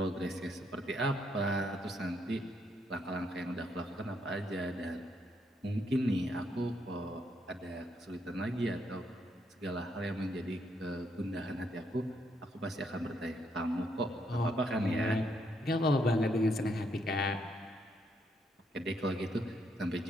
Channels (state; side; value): normal; both; correlation 0.75